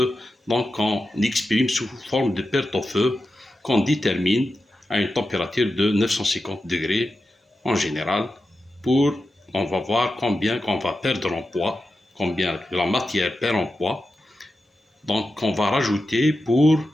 On exprime sous forme de perte au feu qu'on détermine à une température de 950 degrés en général pour on va voir combien qu'on va perdre en poids, combien la matière perd en poids. Donc, on va rajouter pour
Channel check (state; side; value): normal; both; correlation 0.91